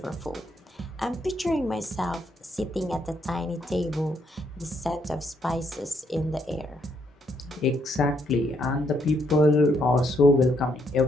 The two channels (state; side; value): normal; both; correlation 0.73